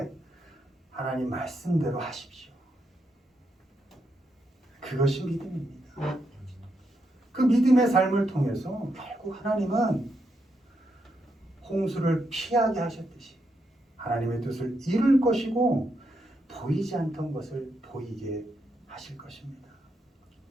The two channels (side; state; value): both; normal; correlation 0.81